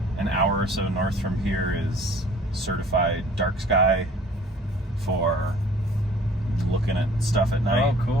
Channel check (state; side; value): normal; both; correlation 0.52